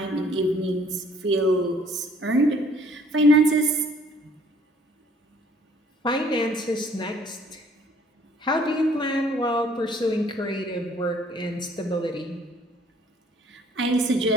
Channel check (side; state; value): both; normal; correlation 0.59